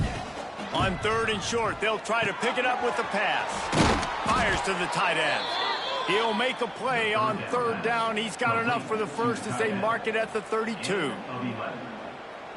On 3rd and short, they'll try to pick it up with the pass. Fires to the tight end. He'll make a play on 3rd down. He's got enough for the first as they mark it at the 32.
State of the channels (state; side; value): identical; both; correlation 1.00